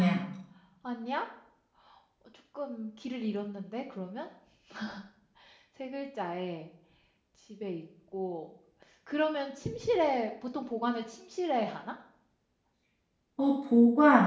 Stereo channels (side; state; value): both; identical; correlation 1.00